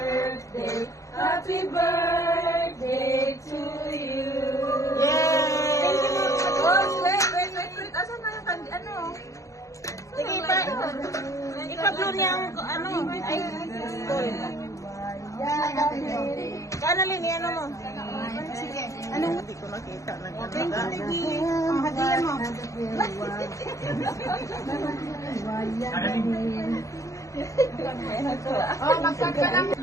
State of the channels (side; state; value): right; late; 0.15 ms